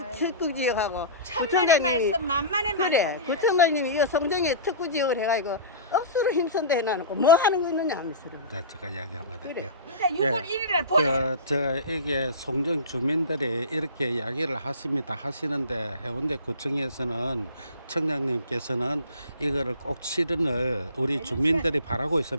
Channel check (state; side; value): inverted; both; correlation -0.34